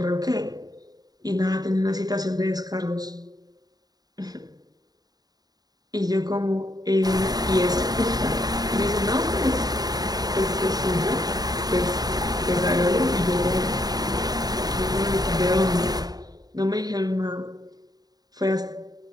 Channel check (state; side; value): late; left; 0.19 ms